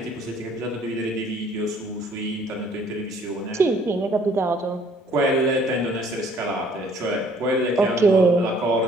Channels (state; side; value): normal; both; correlation 0.59